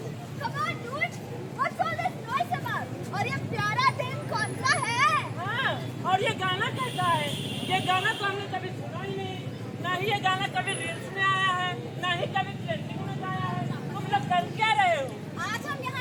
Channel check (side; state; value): both; identical; correlation 1.00